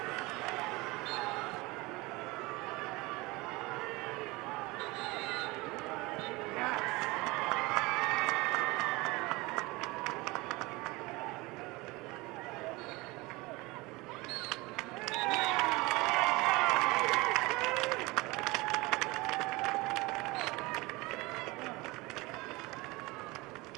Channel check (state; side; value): quieter; left; 22.9 dB